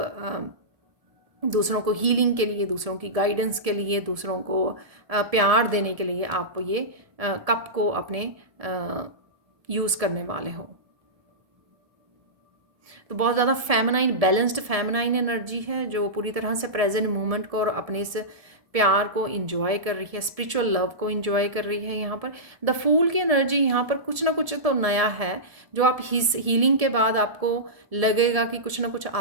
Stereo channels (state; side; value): late; left; 1.7 ms